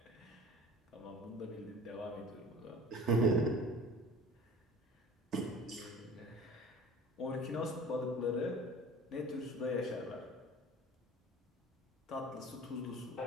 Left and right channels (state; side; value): normal; both; correlation 0.43